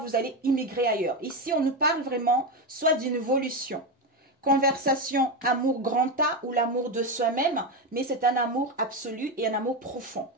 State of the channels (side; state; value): both; normal; correlation 0.13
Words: allez immigrer ailleurs. Ici, on nous parle vraiment soit d'une évolution. Conversation, amour grand A ou l'amour de soi-même, mais c'est un amour absolu et un amour profond.